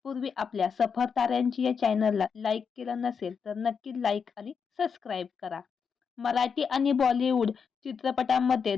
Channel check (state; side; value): quieter; right; 6.2 dB